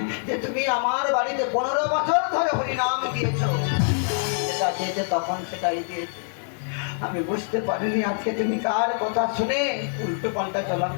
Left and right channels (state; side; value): silent; right; digital silence